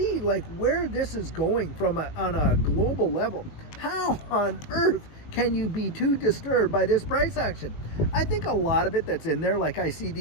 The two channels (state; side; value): late; right; 20 ms